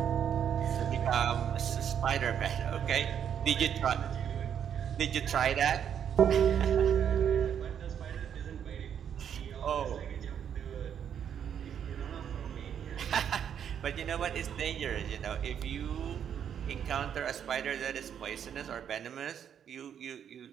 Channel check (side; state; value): left; quieter; 8.6 dB